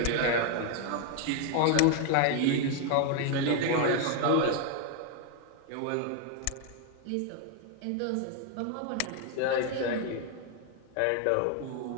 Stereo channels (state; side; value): different; both; correlation 0.01